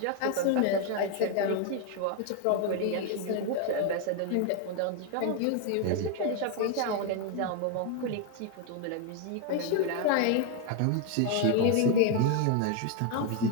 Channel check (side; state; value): both; different; correlation 0.01